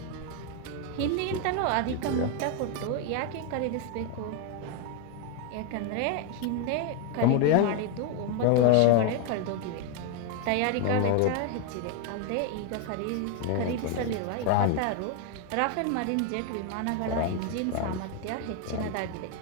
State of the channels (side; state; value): both; different; correlation 0.01